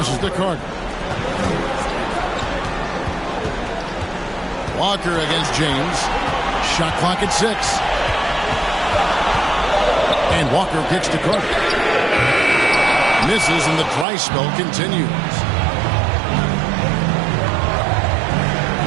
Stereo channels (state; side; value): drops out; left; at 14.1 s